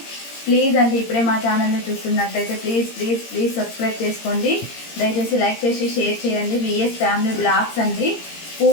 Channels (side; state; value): right; late; 17 ms